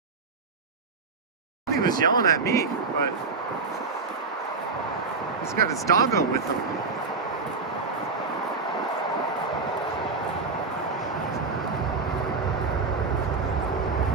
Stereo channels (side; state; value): left; quieter; 4.3 dB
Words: He was yelling at me, but he's got his doggo with him.